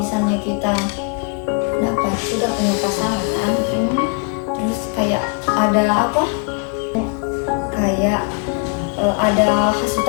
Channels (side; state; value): right; quieter; 35.6 dB